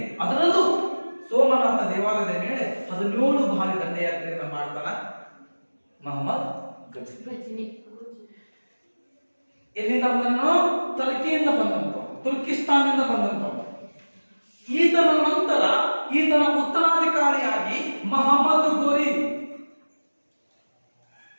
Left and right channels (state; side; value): inverted; both; correlation -1.00